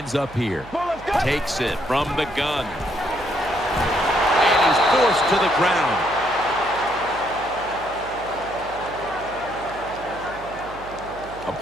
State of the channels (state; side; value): noise; right; hum, 18 dB below the sound